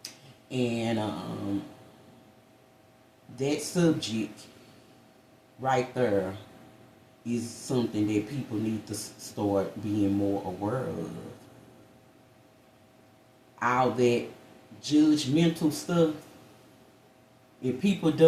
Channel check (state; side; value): identical; both; correlation 1.00